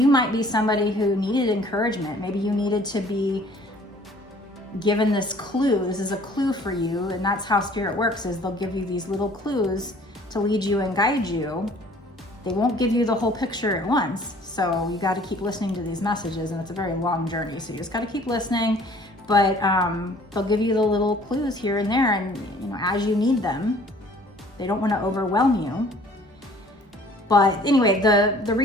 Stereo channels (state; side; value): normal; both; correlation 0.53